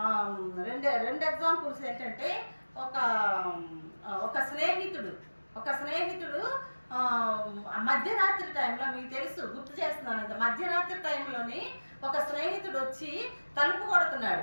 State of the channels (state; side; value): inverted; both; correlation -1.00